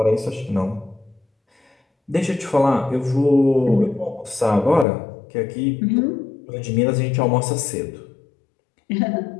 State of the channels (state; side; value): drops out; right; at 4.9 s